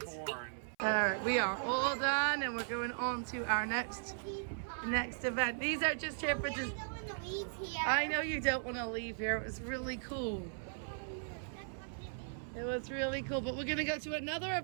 Horn. All right, we are all done, and we're going on to our next event. These are just here for just. Go in the weeds here. I know you don't want to leave here. It was really cool. It was really cool, but we're gonna go to another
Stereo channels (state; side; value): silent; left; 53 dB below the other